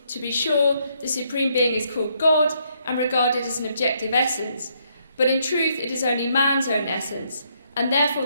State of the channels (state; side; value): inverted; both; correlation -0.73